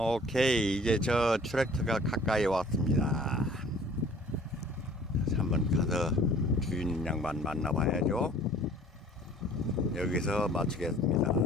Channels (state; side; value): normal; both; correlation 0.51